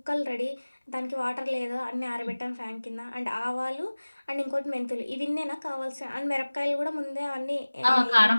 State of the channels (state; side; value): inverted; both; correlation -1.00